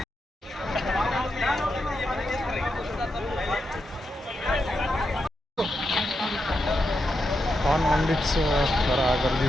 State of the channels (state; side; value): normal; both; correlation 0.86